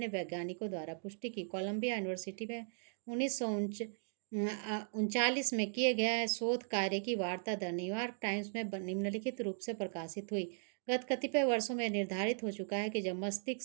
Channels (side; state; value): left; silent; digital silence